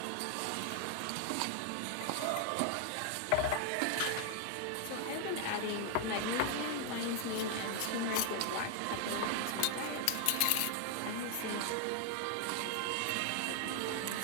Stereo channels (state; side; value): different; both; correlation 0.00